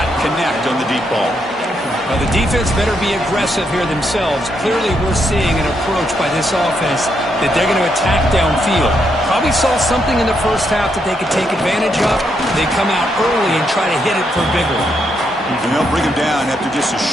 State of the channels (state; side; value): normal; both; correlation 0.78